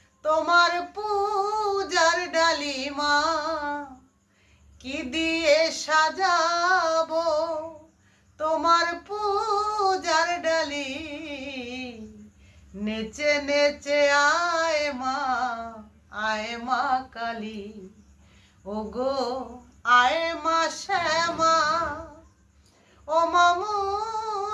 তোমার পূজার ডালিমা, কি দিয়ে সাজাবো তোমার পূজার ডালি। নেচে নেচে আয় মা কালী, ও গো আয় মা শ্যামা, ও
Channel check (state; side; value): identical; both; correlation 1.00